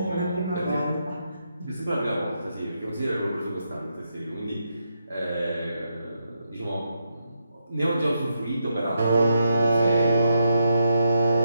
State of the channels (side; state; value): both; inverted; correlation -0.82